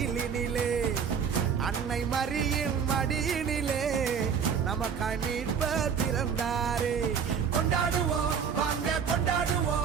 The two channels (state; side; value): quieter; left; 7.0 dB